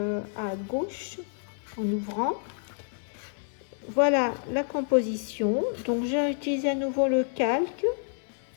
à gauche en ouvrant. Voilà la composition. Donc j'ai utilisé à nouveau le calque.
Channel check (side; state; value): right; silent; digital silence